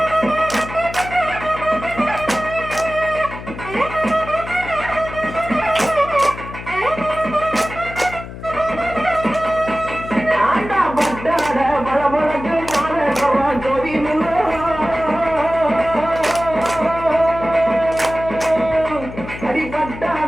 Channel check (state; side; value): noise; left; hum, 12 dB below the sound